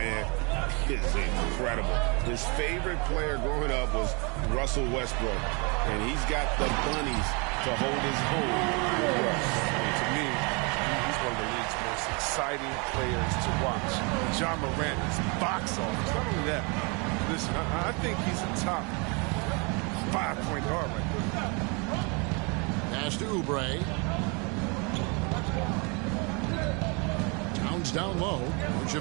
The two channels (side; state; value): left; quieter; 31.7 dB